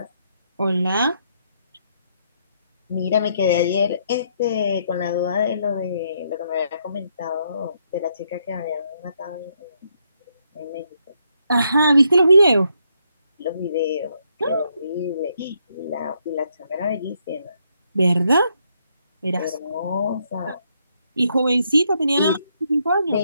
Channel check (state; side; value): inverted; both; correlation -0.75